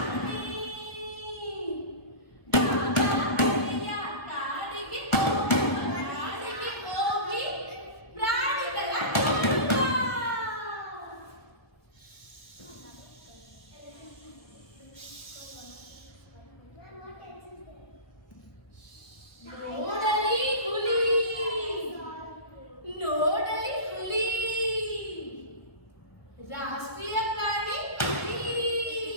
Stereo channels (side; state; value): right; late; 1.1 ms